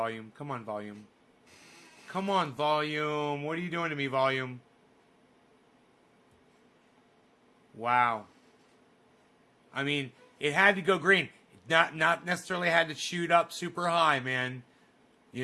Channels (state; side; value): identical; both; correlation 1.00